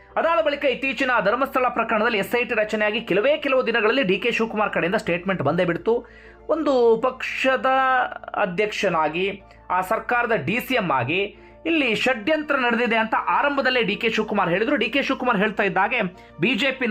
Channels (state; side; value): identical; both; correlation 1.00